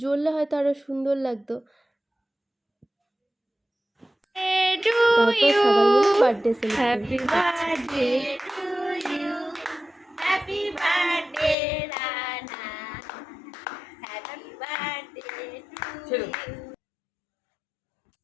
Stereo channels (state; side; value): drops out; right; at 11.6 s